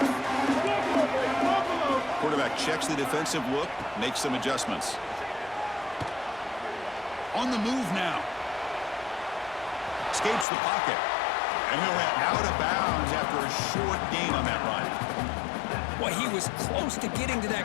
Quarterback checks the defensive look, makes some adjustments. On the move now. Escapes the pocket. And he'll head out of bounds after a short gain on that run. Well, he was close to getting to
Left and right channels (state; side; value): drops out; right; at 10.5 s